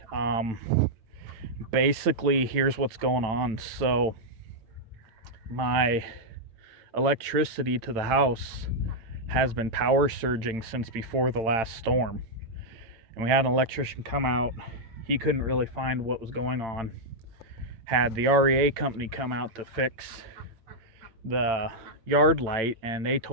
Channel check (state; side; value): late; left; 8.9 ms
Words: Basically, here's what's going on. So my electricity to the house has been power surging since before the last storm. And we had an electrician come out. He couldn't really find what was going on. Had the REA company come out to fix the yard light, and they